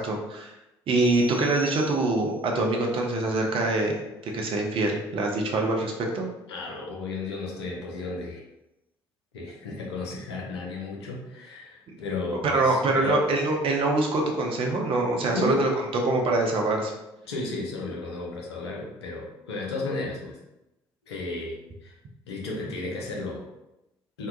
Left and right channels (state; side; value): normal; both; correlation 0.48